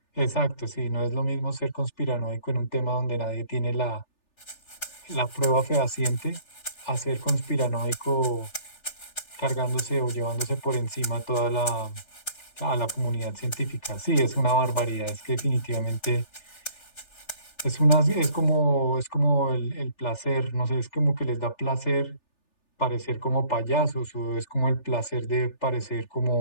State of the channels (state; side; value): late; right; 3.4 ms